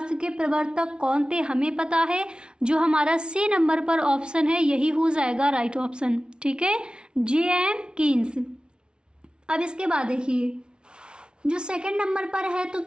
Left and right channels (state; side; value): late; left; 0.056 ms